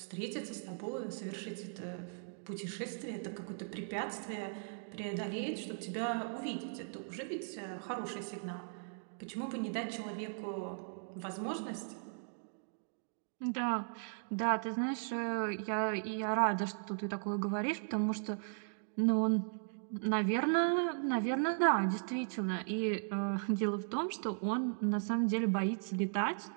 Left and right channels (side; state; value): left; silent; digital silence